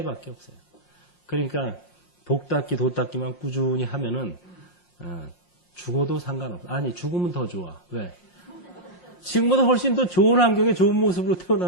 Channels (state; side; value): late; right; 5.6 ms